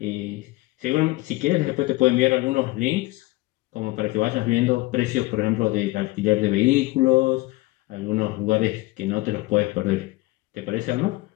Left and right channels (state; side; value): quieter; right; 20.5 dB